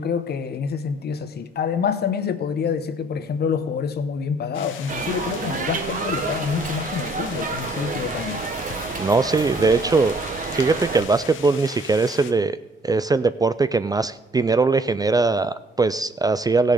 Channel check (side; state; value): both; normal; correlation 0.59